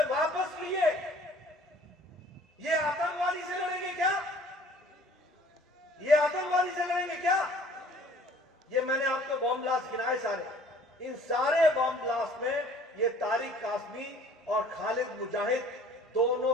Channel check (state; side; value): normal; both; correlation 0.53